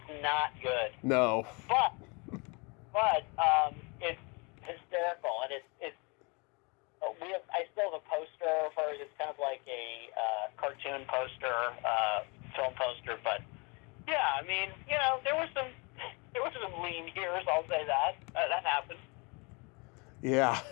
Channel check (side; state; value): right; quieter; 30.3 dB